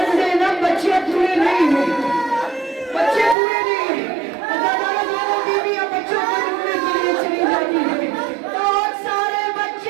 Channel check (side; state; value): left; drops out; at 3.4 s